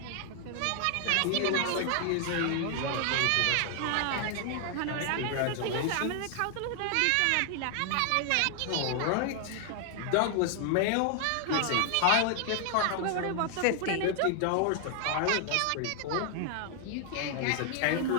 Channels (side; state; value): both; different; correlation 0.00